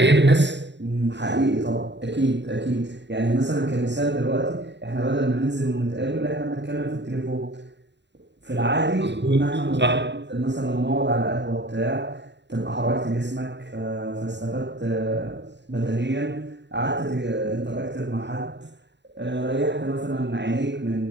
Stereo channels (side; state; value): left; late; 0.51 ms